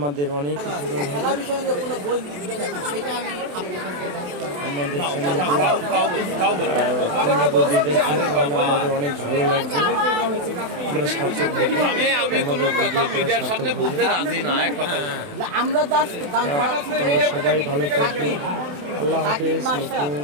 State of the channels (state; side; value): late; left; 28 ms